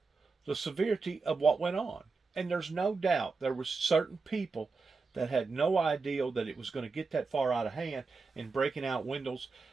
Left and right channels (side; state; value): left; quieter; 4.3 dB